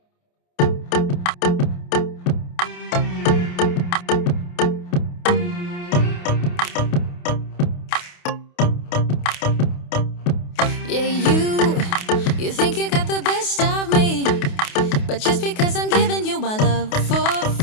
Yeah, you think you got the best of me, but just because I'm giving you my love for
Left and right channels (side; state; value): right; late; 28 ms